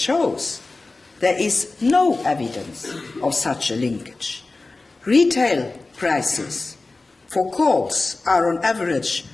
there is no evidence of such a linkage. Retail prices for calls are on average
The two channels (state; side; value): quieter; right; 3.4 dB